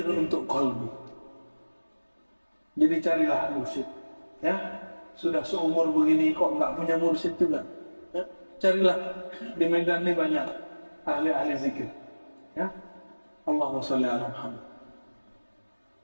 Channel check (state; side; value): inverted; both; correlation -1.00